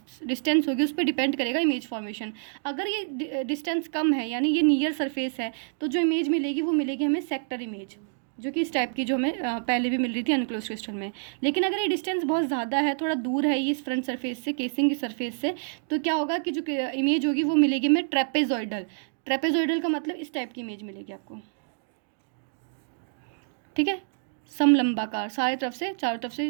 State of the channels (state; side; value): silent; left; digital silence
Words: डिस्टेंस होगी उस पर डिपेंड करेगा इमेज फॉर्मेशन। अगर ये डिस्टेंस कम है यानी ये नियर सरफेस है तो जो इमेज मिलेगी वो मिलेगी हमें सेक्टर इमेज, जो कि इस टाइप की जो हमें पहले भी मिल रही थी अनक्लोज्ड क्रिस्टल में। लेकिन अगर ये डिस्टेंस बहुत ज़्यादा है, थोड़ा दूर है ये इस फ्रंट सरफेस से, केसिंग की सरफेस से, तो क्या होगा कि जो इमेज होगी वो मिलेगी हमें ट्रेपेजॉइडल। ट्रेपेजॉइडल का मतलब इस टाइप की इमेज मिलेगी आपको, ठीक है। समलंबाकार, सारे तरफ से चारों तरफ से